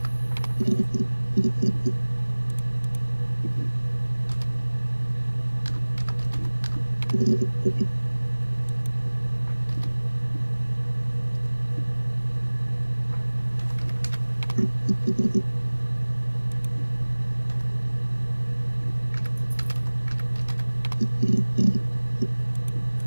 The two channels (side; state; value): both; inverted; correlation -1.00